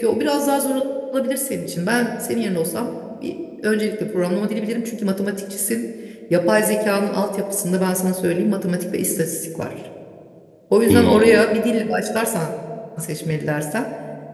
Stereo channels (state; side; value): identical; both; correlation 1.00